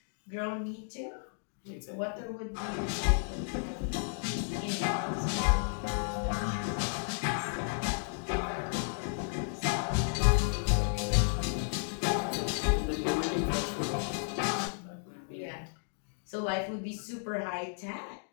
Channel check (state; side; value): silent; right; digital silence